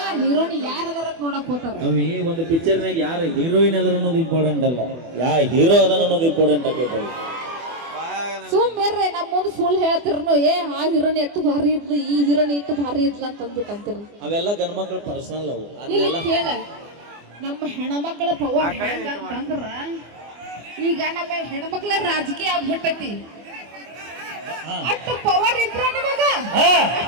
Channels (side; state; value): left; late; 24 ms